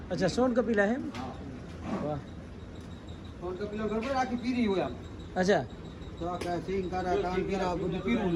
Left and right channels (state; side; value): identical; both; correlation 1.00